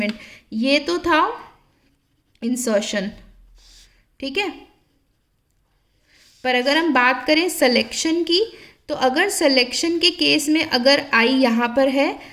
ये तो था इंसर्शन। ठीक है, पर अगर हम बात करें सिलेक्शन की, तो अगर सिलेक्शन के केस में अगर आई यहाँ पर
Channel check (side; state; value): both; identical; correlation 1.00